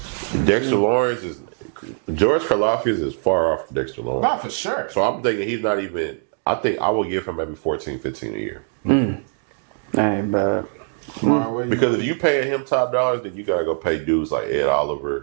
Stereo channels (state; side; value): silent; left; digital silence